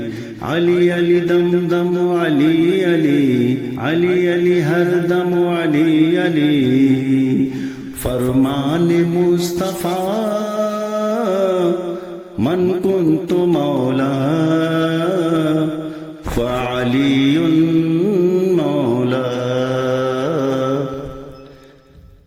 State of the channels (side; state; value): both; identical; correlation 1.00